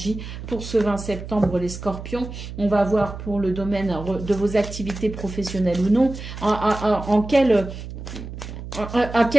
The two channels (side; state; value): right; noise; hum, 10 dB below the sound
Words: pour ce 20 septembre, les scorpions. On va voir pour le domaine de vos activités professionnelles ou non, à quelle